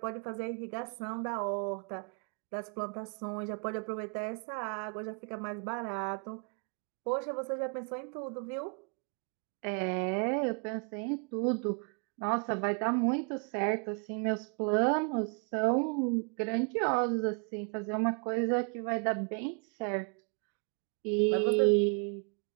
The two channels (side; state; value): left; quieter; 39.1 dB